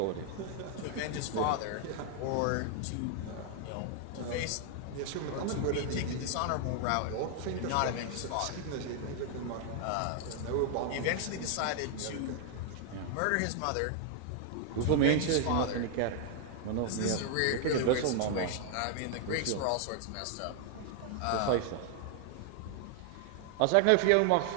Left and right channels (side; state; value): both; different; correlation 0.00